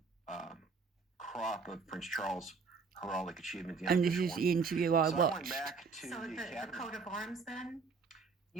crop of Prince Charles' heraldic achievement. And this is the interview I watched. I went back to the coat of arms then?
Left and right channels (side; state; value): left; quieter; 4.7 dB